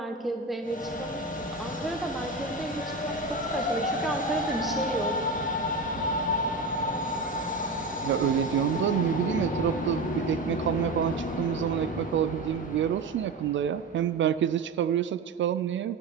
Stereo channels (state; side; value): quieter; left; 3.6 dB